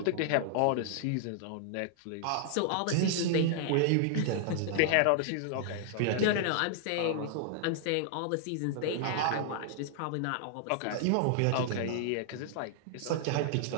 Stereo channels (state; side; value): different; both; correlation 0.00